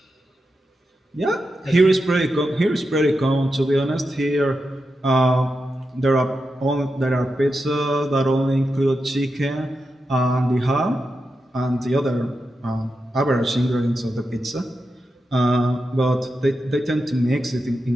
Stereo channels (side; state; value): both; normal; correlation 0.88